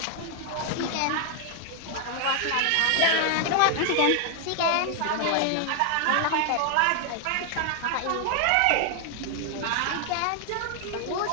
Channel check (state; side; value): different; both; correlation 0.00